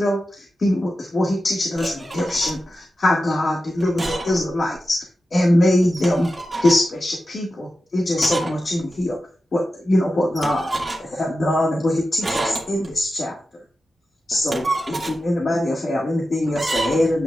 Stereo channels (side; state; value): both; normal; correlation 0.92